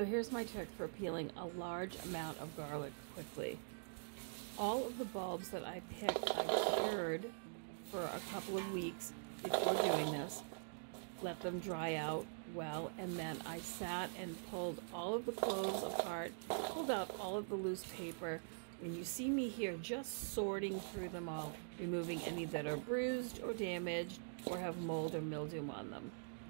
here's my trick for peeling a large amount of garlic quickly. All of the bulbs that I picked, I cured for a couple of weeks before doing this. Let them dry out well, and then I sat and pulled all of the cloves apart, pulled out all of the loose paper, and you see me here just sorting through them all, removing any that are bruised or damaged or have mold or mildew on them.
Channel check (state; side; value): silent; left; digital silence